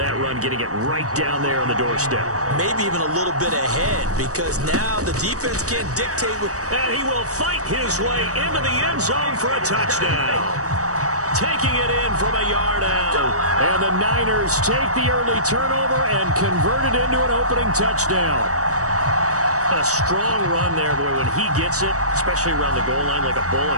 run, getting it right down there on the doorstep. Maybe even a little bit ahead, because now the defense can't dictate. And he will fight his way into the end zone for a touchdown. Taking it in from a yard out. And the Niners take the early turnover and convert it into an opening touchdown. A strong run there, boy, when he gets it, especially around the goal line, like a bull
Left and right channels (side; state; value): left; late; 0.66 ms